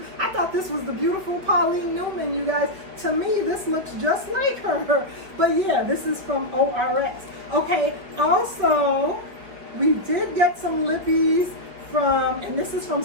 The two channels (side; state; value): left; late; 5.4 ms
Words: I thought this was the beautiful Paulineenewman, you guys. To me, this looks just like her. But yeah, this is from ORS. Okay, also, we did get some lippies and this is from